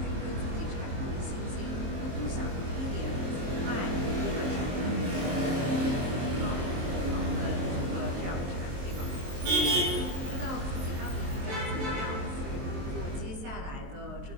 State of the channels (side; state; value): left; late; 23 ms